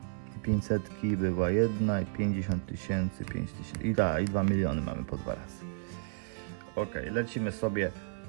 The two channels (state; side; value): silent; left; 56 dB below the other